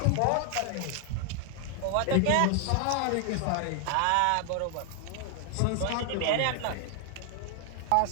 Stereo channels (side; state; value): both; different; correlation 0.00